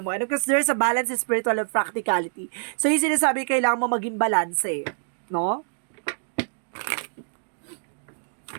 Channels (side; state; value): left; silent; digital silence